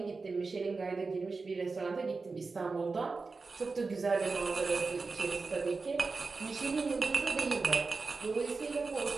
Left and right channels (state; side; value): quieter; left; 4.2 dB